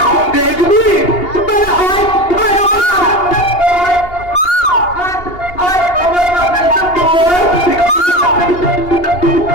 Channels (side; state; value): right; late; 2.8 ms